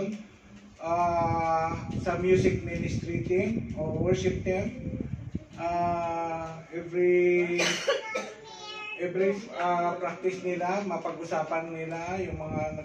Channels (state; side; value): identical; both; correlation 1.00